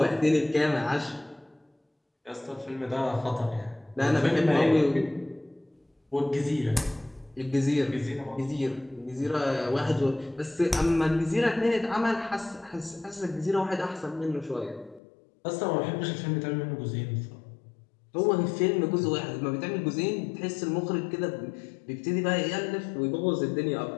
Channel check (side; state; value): right; drops out; at 15.0 s